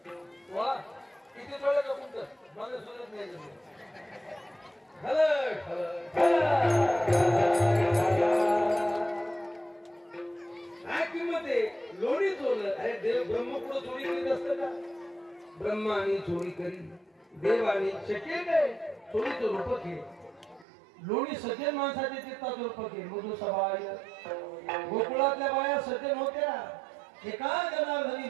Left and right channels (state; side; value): drops out; left; at 20.7 s